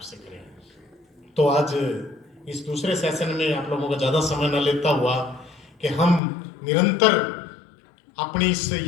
से करें। तो आज इस दूसरे सेशन में आप लोगों का ज़्यादा समय न लेता हुआ कि हम निरंतर अपनी इस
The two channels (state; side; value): drops out; right; at 6.2 s